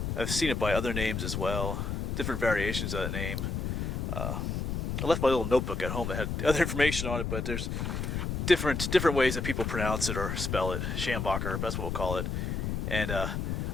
I've seen it by other names as well, different variations of that name. I left my little notebook at home that had other information on it, but there's different ways that people pronounce it or spell it. Schambacher, that's what we'll call it. And I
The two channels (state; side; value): noise; left; rumble, 2 dB below the sound